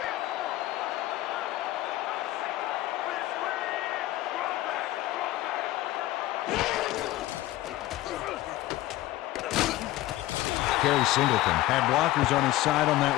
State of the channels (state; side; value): quieter; right; 16.2 dB